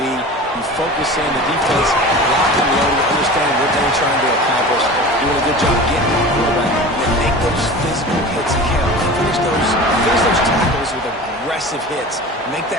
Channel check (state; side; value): normal; both; correlation 0.35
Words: You focus in the defense, lock and load, understand what they're trying to accomplish, doing a good job getting the quarterback, and then make those physical hits count. Finish those tackles with aggressive hits. Make